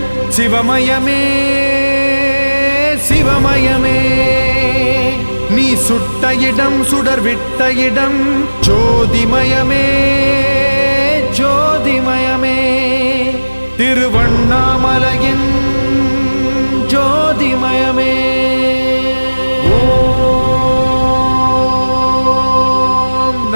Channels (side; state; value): both; inverted; correlation -1.00